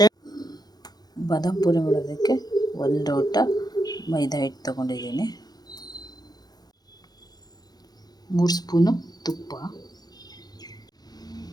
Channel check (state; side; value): late; right; 0.19 ms